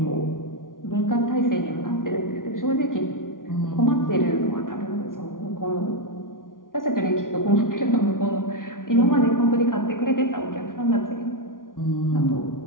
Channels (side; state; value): right; late; 0.89 ms